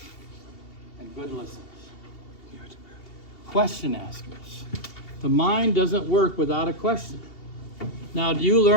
and good listeners. Question askers. The mind doesn't work without a question. Now, do you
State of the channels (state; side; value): late; right; 2.7 ms